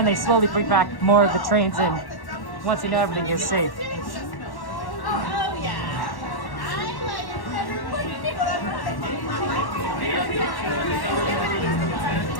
they slowly bring back more of the trains in once they know everything is safe.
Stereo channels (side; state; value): right; late; 1.1 ms